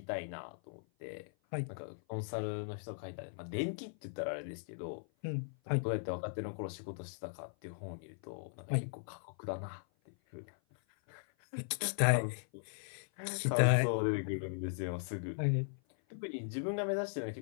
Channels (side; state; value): right; silent; 52 dB below the other